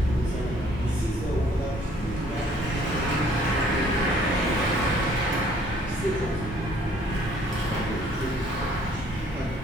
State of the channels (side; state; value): both; normal; correlation 0.60